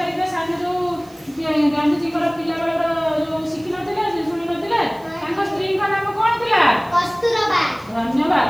रे साने जो गांधी जी को पिला बेला जो शिखि नथिले जे सुनि नथिले तांको स्त्री का नाम कोन थिला कस्तूरबा धन्यवाद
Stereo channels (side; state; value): right; noise; hiss, 27 dB below the sound